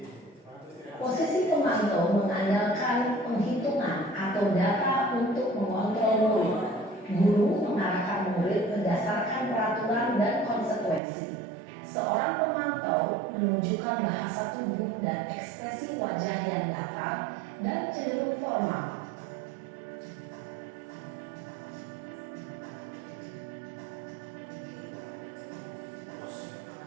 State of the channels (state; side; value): drops out; left; at 11.0 s